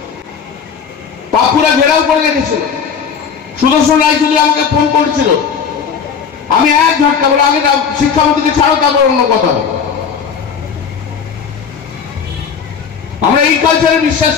পাপ্পুরা ঘেরাও করে রেখেছিল। সুদর্শন রায়চৌধুরী আমাকে ফোন করেছিল, আমি এক ঝটকা বলে আগে শিক্ষামন্ত্রীকে ছাড়ো, তারপর অন্য কথা হবে। আমরা এই কালচারে বিশ্বাস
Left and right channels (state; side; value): quieter; right; 6.7 dB